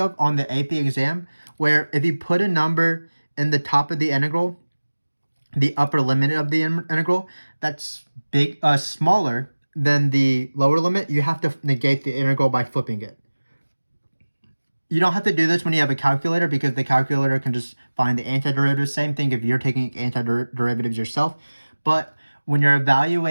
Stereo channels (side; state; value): both; inverted; correlation -1.00